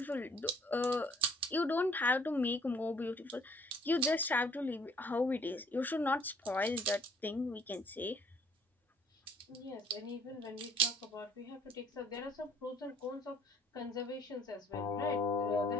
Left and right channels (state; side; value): normal; both; correlation 0.60